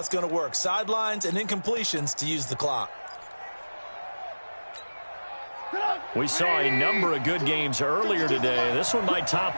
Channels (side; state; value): both; inverted; correlation -1.00